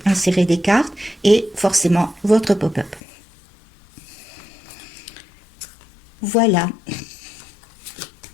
insérer des cartes et forcément votre pop-up. Voilà.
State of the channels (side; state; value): right; drops out; at 3.0 s